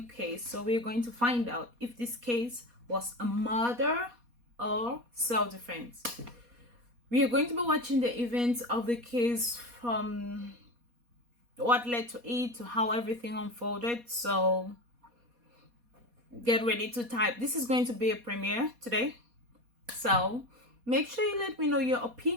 case, so we're going to find out if this case was a murder or self-defense. We are going to be watching the events of the case from what led to it to how everything unfolded. So get ready to type. This is going to be a premiere today, so make sure you let me know your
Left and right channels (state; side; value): late; left; 4.2 ms